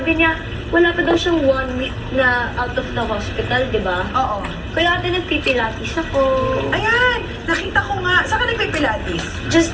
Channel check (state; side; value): identical; both; correlation 1.00